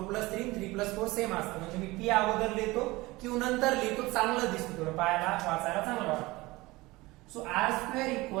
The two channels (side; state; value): left; quieter; 20.9 dB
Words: + 3 3 + 4 सेम असतं. म्हणजे मी पी अगोदर लिहितो, क्यू नंतर लिहितो, चांगलं दिसतं, थोडं पाहायला वाचायला चांगलं वाटतं. So r²